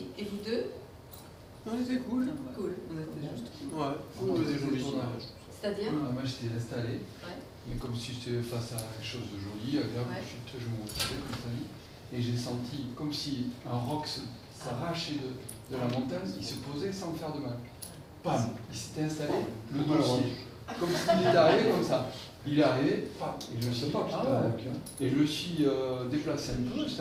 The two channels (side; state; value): both; identical; correlation 1.00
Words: Et vous deux? On était cool. Cool. On était juste. Ouais, on faisait joli tournage. C'est-à-dire? Moi j'étais installé, Ouais. et comme si j'étais face à quelque chose de joli, agréable, je me montrais comme ça, et j'ai senti comme si un roc s'arrachait de la montagne, il se posait sans me faire de mal. Pam, il s'était installé, le dossier, comme s'il était arrivé comme ça. Il est arrivé, pam, et je me suis pas et je me suis déplacé un peu, j'étais